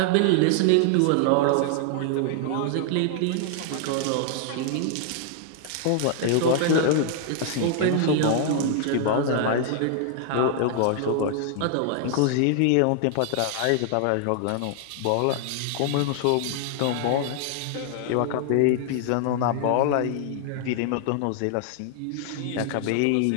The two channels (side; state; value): both; different; correlation 0.00